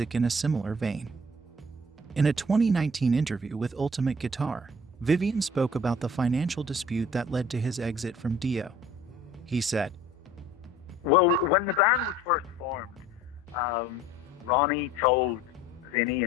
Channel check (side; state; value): both; normal; correlation 0.50